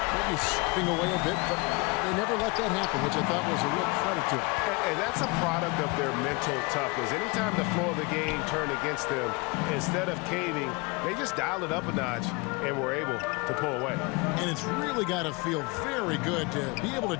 maybe slipping away a bit, but they never let that happen, which I thought was a real credit to them. And that's a product of their mental toughness. Anytime the flow of the game turned against them, instead of caving, they just dialed it up a notch and were able to pull away. And it's really got to feel very good to be able to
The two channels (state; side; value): quieter; right; 27.6 dB